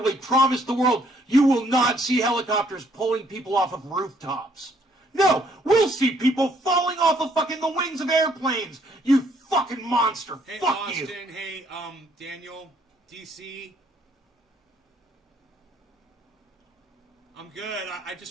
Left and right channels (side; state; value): both; normal; correlation 0.67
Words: promised the world you will not see helicopters pulling people off of rooftops. No, we'll see people falling off of fucking the wings of airplanes. You fucking monster. Hey, fuck Austin, you. hey, Daniel, DC. I'm good. I